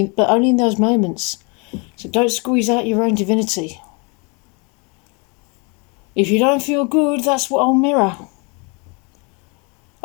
only in those moments. So don't squeeze out your own divinity. If you don't feel good, that's what I'll mirror.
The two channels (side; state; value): right; quieter; 31.8 dB